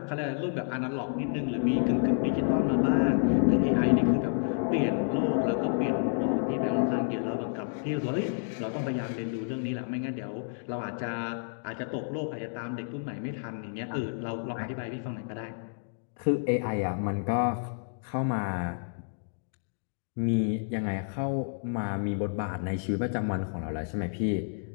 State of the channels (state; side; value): silent; right; digital silence